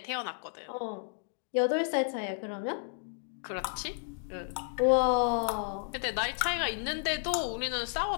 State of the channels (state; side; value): silent; right; digital silence